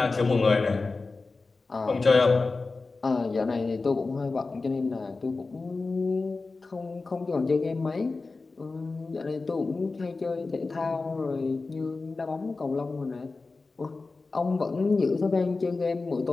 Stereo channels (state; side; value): quieter; right; 3.8 dB